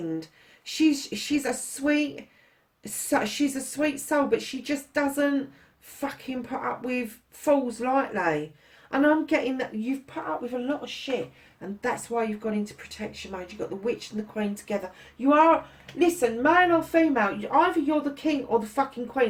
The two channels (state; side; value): identical; both; correlation 1.00